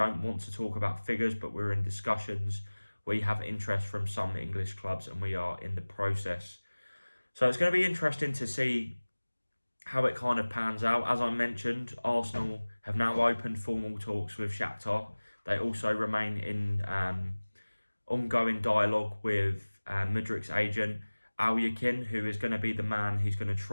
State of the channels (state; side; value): inverted; both; correlation -1.00